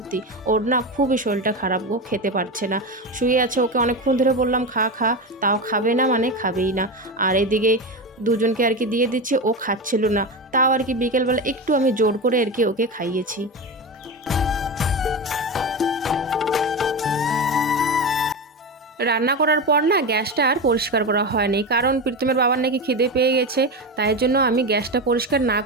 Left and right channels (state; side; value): normal; both; correlation 0.20